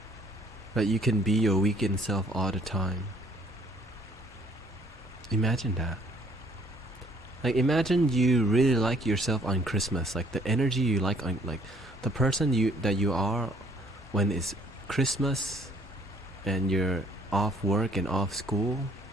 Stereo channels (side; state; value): both; normal; correlation 0.61